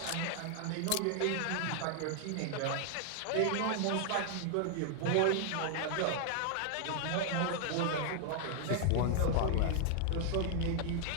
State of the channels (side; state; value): both; different; correlation 0.00